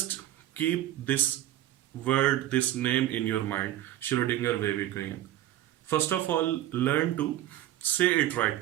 keep this word, this name in your mind, Schrodinger wave equation. First of all, learn to say it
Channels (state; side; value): quieter; left; 13.3 dB